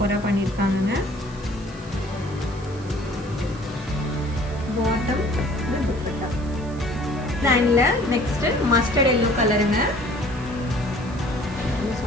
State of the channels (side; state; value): right; noise; hiss, 23 dB below the sound